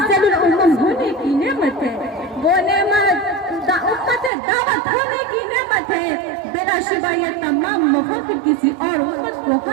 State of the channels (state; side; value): drops out; left; at 4.3 s